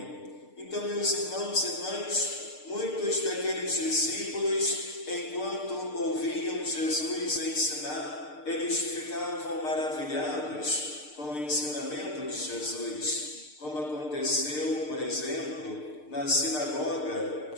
Então, meus irmãos e irmãs, muitos daqueles discípulos, enquanto ouviam Jesus ensinar, eles ficavam maravilhados com o ensinamento de Jesus, como aconteceu, por exemplo, na sinagoga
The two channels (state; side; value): late; right; 6.6 ms